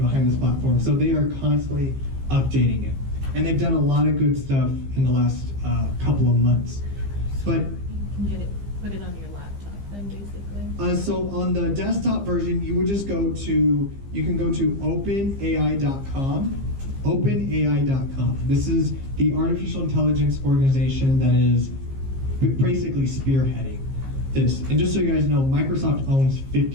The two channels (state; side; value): late; left; 15 ms